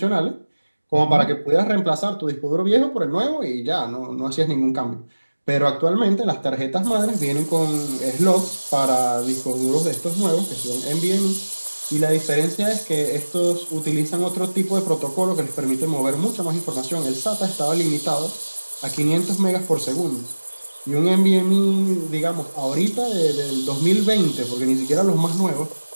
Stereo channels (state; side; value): inverted; both; correlation -1.00